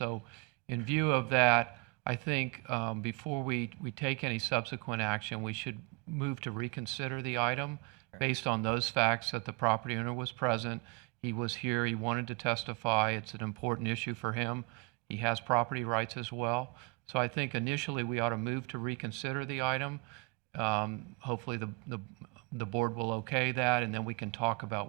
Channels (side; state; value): left; quieter; 28.5 dB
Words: in view of that, I think before we take any subsequent action, we should move to reconsider the item based on those facts that the property owner was present. He was here, he wanted to testify. It's an important issue for him. He has property rights as well. So I think initially we ought to move to reconsider the item. Hopefully the board will okay that, and then we can talk about